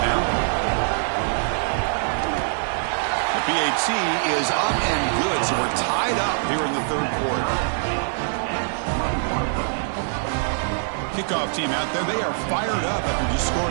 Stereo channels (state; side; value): silent; left; digital silence